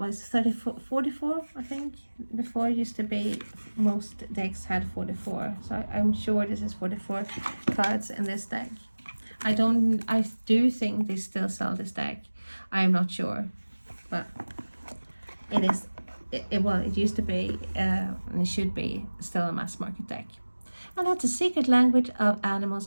44, I think. Before it used to be, most decks had 44, so I'm sure this is 44 cards in this deck. I do think they still sell this deck. I'm not sure, but it is well, it used to be and it should be still a mass market deck. And that's a secret language of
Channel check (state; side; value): inverted; both; correlation -1.00